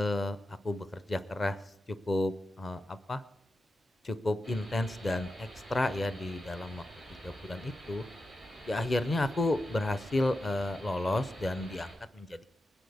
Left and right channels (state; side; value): normal; both; correlation 0.90